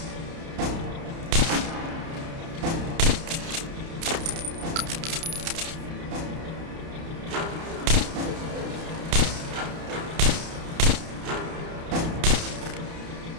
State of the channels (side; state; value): left; late; 30 ms